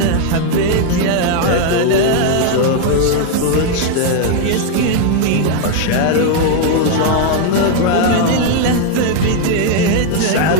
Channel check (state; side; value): different; both; correlation 0.00